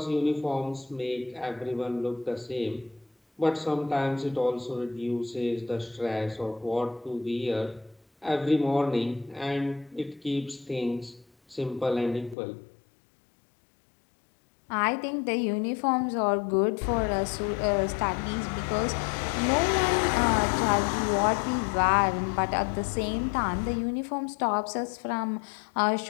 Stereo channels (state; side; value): drops out; right; at 12.4 s